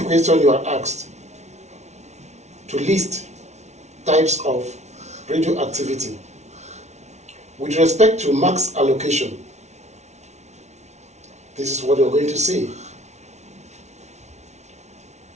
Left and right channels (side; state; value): left; late; 0.32 ms